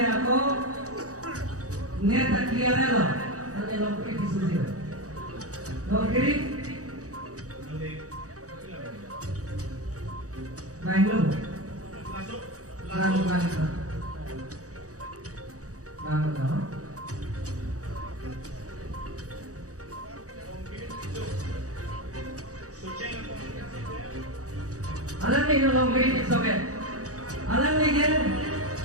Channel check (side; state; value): left; late; 0.66 ms